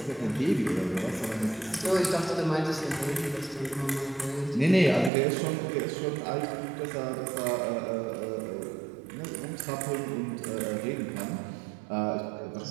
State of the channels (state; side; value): drops out; left; at 5.1 s